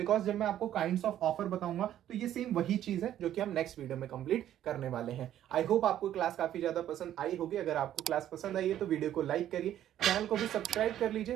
जब मैं आपको काइंड्स ऑफ ऑफर बताऊंगा तो ये सेम वही चीज है जो कि हम नेक्स्ट वीडियो में कंप्लीट करने वाले हैं। आई होप आपको क्लास काफी ज्यादा पसंद आई होगी। अगर आपको क्लास पसंद आई है तो वीडियो को लाइक करिए, चैनल को भी सब्सक्राइब कर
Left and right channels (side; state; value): left; quieter; 11.6 dB